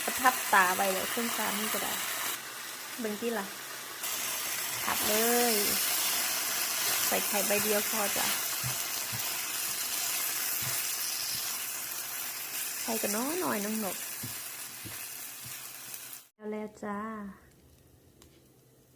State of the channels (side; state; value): both; identical; correlation 1.00